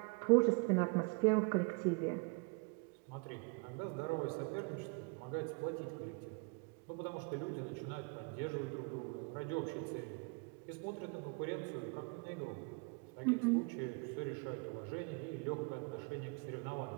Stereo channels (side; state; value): left; quieter; 31.8 dB